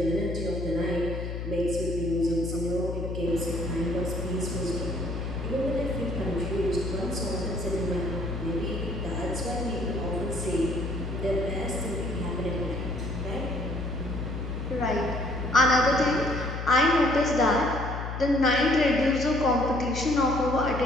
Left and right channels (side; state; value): left; noise; hum, 5 dB below the sound